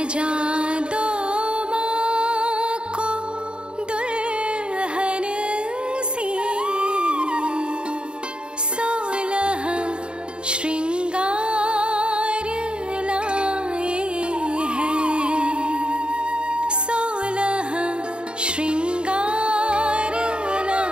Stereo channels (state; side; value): late; left; 0.052 ms